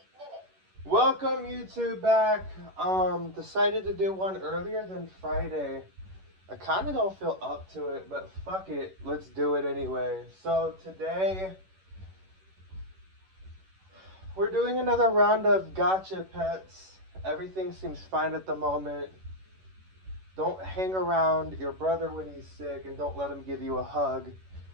minutes. Welcome YouTube back. Decided to do one earlier than Friday. I kind of don't feel up to it, but fuck it. Let's do it anyway. So today, we're doing another round of gotcha pets. Everything seems fine at the moment. Don't hang around your brother when he's sick and don't let him give you a hug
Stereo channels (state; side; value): late; left; 11 ms